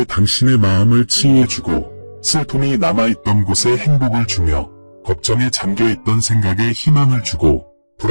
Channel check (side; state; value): both; inverted; correlation -1.00